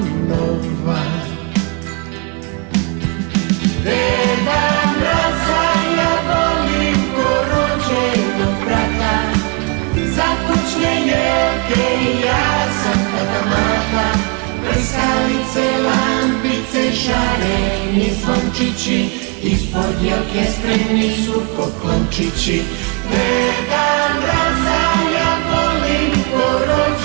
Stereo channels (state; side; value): quieter; left; 31.2 dB